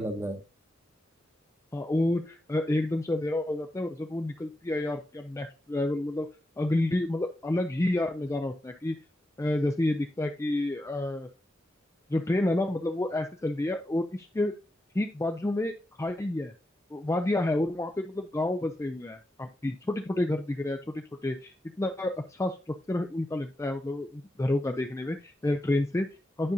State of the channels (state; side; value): normal; both; correlation 0.87